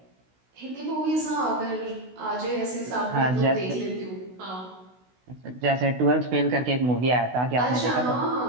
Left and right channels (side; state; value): left; late; 16 ms